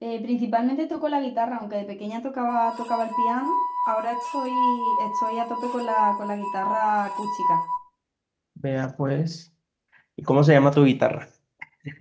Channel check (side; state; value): both; identical; correlation 1.00